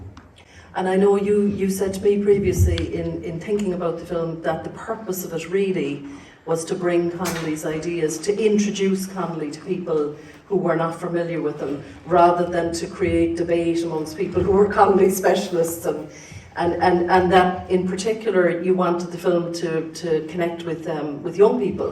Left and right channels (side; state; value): both; identical; correlation 1.00